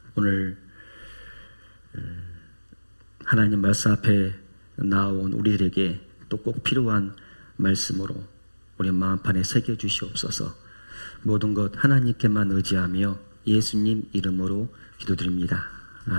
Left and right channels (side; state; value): both; inverted; correlation -1.00